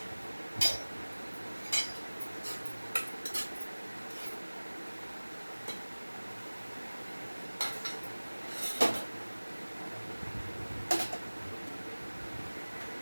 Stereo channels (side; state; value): both; inverted; correlation -1.00